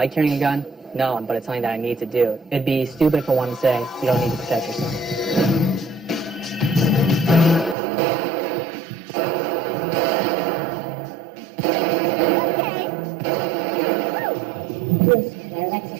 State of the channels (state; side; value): drops out; left; at 7.8 s